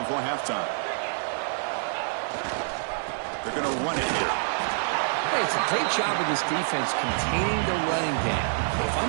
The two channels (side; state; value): left; silent; 60 dB below the other